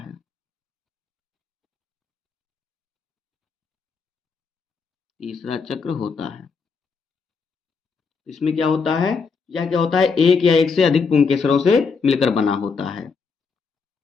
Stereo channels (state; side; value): quieter; right; 5.0 dB